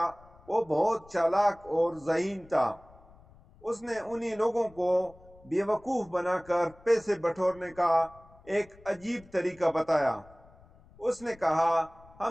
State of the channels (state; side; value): noise; left; rumble, 25 dB below the sound